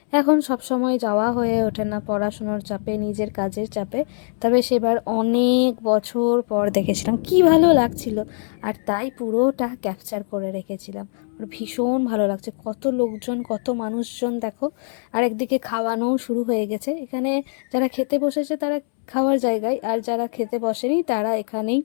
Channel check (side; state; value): right; silent; 64 dB below the other